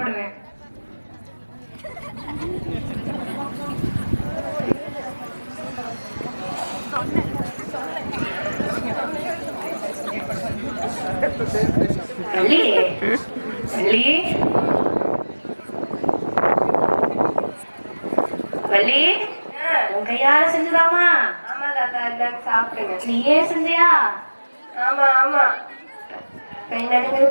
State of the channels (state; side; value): inverted; both; correlation -1.00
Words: வள்ளி, வள்ளி, வள்ளி, உன் கையால செஞ்சுதாமா? ஆமா தாத்தா, இந்தாங்க சாப்பிடுங்க. நீயே செஞ்சியா? ஆமா ஆமா. கை நடுங்குது,